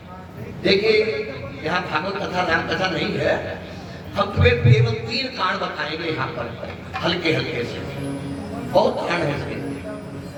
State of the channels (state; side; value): identical; both; correlation 1.00